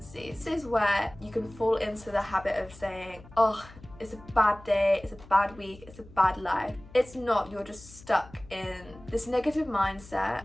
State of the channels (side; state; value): left; noise; hum, 20 dB below the sound